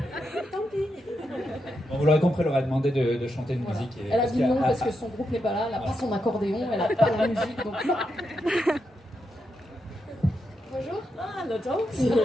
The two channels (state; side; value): normal; both; correlation 0.84